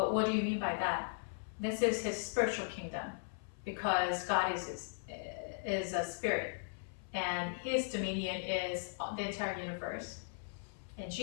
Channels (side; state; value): right; silent; 53 dB below the other